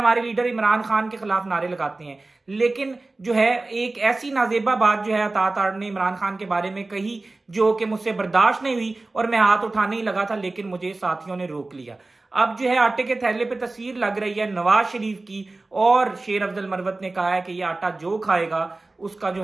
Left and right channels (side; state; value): left; quieter; 3.2 dB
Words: लीडर इमरान खान के खिलाफ नारे लगाते हैं। लेकिन जो है एक ऐसी नाजेबा बात जो है अता तारड़ ने इमरान खान के बारे में कही जो कि मुझसे बर्दाश्त नहीं हुई और मैं हाथ उठाने ही लगा था, लेकिन मुझे साथियों ने रोक लिया। अब जो है आटे के थैले पे तस्वीर लग रही है नवाज शरीफ की और शेर अफजल मरवत ने कहा है कि यह आटा जो खाएगा उसका जो